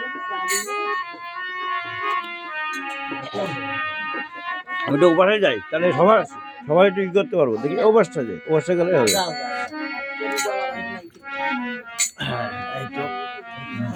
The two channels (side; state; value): both; identical; correlation 1.00